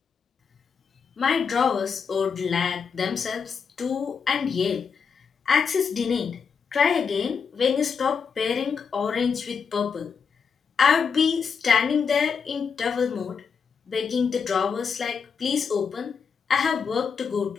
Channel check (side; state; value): right; quieter; 6.2 dB